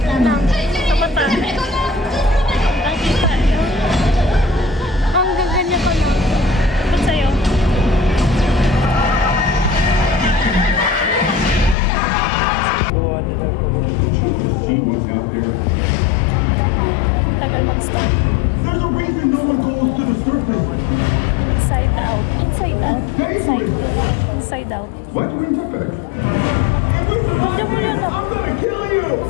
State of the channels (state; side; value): drops out; right; at 11.8 s